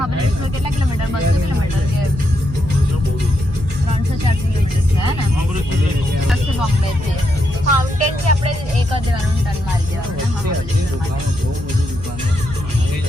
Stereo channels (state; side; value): noise; right; hum, 12 dB below the sound